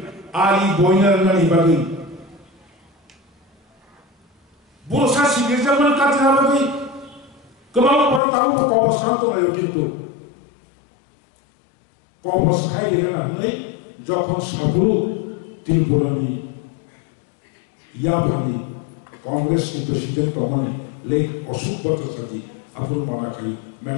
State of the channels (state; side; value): drops out; right; at 8.2 s